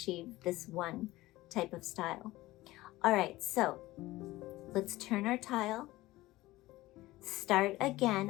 this one type of style. All right, so let's turn our tile. Start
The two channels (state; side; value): quieter; right; 18.1 dB